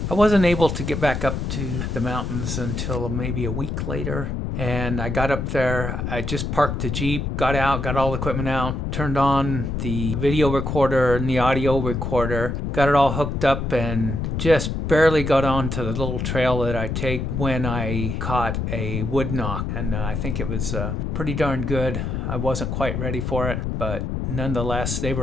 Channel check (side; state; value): left; noise; rumble, 2 dB below the sound